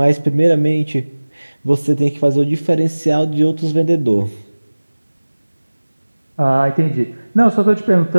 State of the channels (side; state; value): both; inverted; correlation -1.00